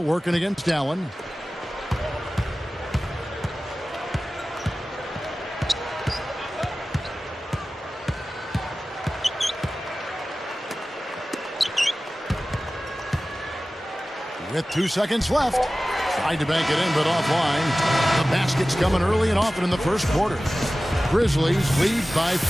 against Allen. With 2 seconds left. Tried to bank it in, but offline. The basket's coming early and often in the first quarter. Grizzlies lead by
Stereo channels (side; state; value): both; normal; correlation 0.96